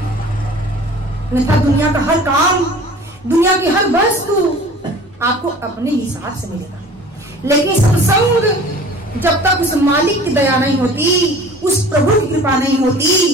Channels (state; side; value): normal; both; correlation 0.44